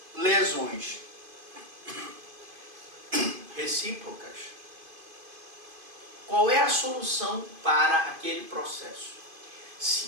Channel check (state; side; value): late; left; 2.5 ms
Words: lesões recíprocas, Qual é a solução para aquele processo?